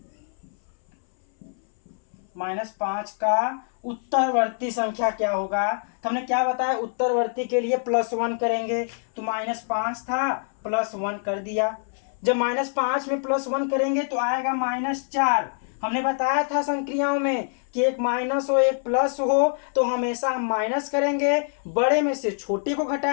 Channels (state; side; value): silent; right; 62 dB below the other